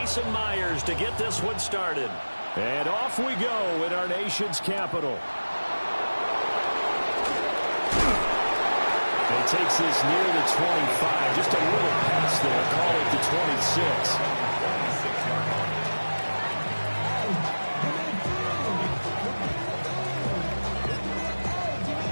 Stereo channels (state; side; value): inverted; both; correlation -1.00